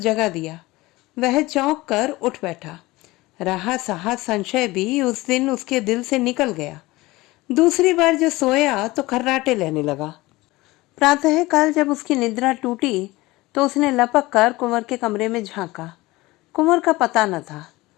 दिया। वह चौंक कर उठ बैठा। रहा सहा संशय भी उस दिन उसके दिल से निकल गया। दूसरी बार जो सोया तो खर्राटे लेने लगा। प्रातःकाल जब उसकी निद्रा टूटी तो उसने लपक कर कुंवर के कमरे में झांका। कुंवर का पता न था।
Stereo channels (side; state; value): right; quieter; 20.2 dB